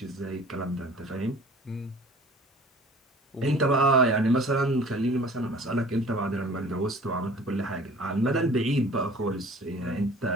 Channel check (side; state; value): both; normal; correlation 0.47